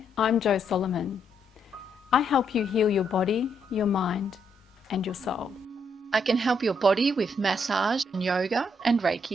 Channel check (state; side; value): normal; both; correlation 0.75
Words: I'm Jo Solomon. I help you heal your body, your mind, and your soul. I can help your body with massage and yoga and